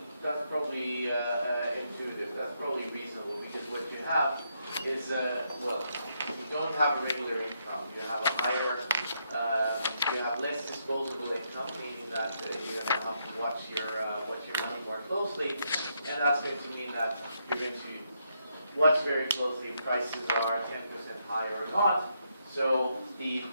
intuitive, that's probably reasonable, because what you have is, well, you don't have a regular income, you have a higher, you have less disposable income, meaning that you're going to have to watch your money more closely, and that's going to mean that you're going to watch very closely if prices are 10% higher or not. So the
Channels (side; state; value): both; inverted; correlation -0.78